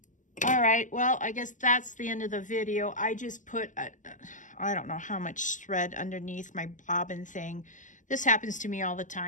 All right, well, I guess that's the end of the video. I just put, I don't know how much thread underneath my bobbin thing. This happens to me all the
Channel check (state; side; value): late; right; 0.37 ms